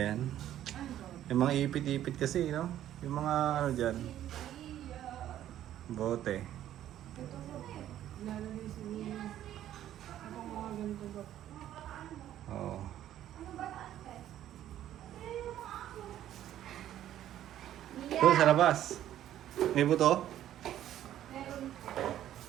yan? Yung mga ipit-ipit kasi, no? Yung mga ano dyan. Bote. Oo. Doon sa labas. May buto?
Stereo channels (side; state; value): left; quieter; 12.0 dB